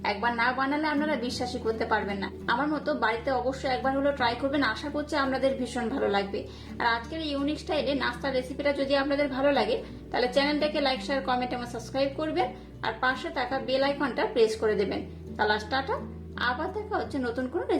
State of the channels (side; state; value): both; identical; correlation 1.00